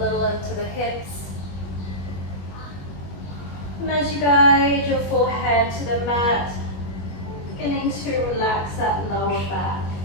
into the hips. And as you guide your forehead to the mat, beginning to relax that lower back.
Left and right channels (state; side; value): late; right; 21 ms